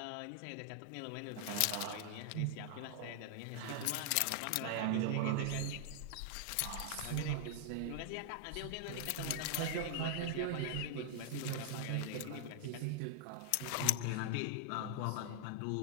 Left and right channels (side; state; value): both; different; correlation 0.00